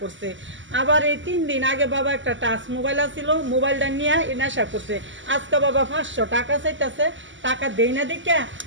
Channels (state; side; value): late; left; 0.55 ms